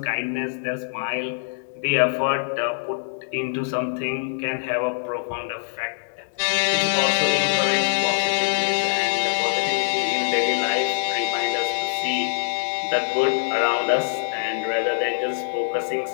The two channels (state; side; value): silent; right; digital silence